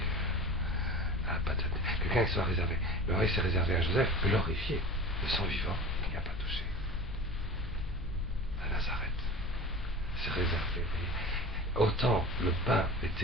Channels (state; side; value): noise; left; hum, 11 dB below the sound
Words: à la paternité. Quelqu'un qui soit réservé. Mais oui, c'est réservé à Joseph, glorifié, de son vivant, il n'y a pas touché. À Nazareth. C'est réservé. Autant le pain